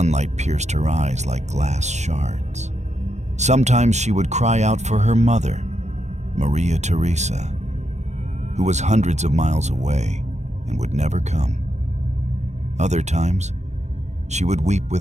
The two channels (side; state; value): left; late; 0.33 ms